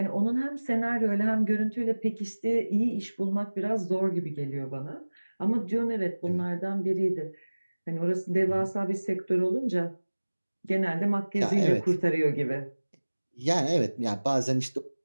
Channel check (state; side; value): inverted; both; correlation -1.00